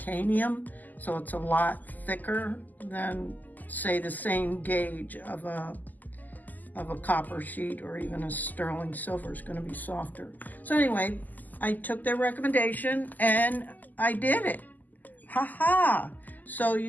so it's a lot thicker than, say, the same gauge of a copper sheet, or even a sterling silver is going to be softer. So anyway, I took their recommendation and I did it. Ha. So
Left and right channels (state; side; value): late; right; 0.083 ms